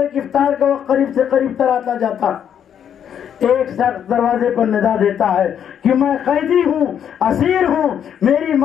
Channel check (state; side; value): quieter; right; 8.9 dB